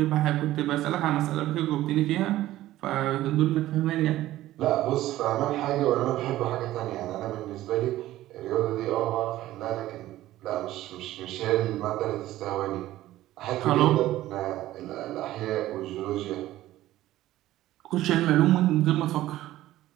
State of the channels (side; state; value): left; quieter; 15.0 dB